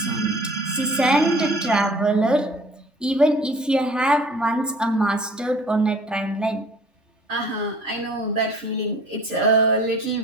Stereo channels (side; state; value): both; normal; correlation 0.50